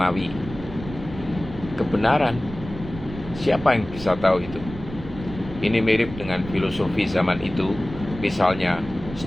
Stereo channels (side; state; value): right; noise; rumble, 13 dB below the sound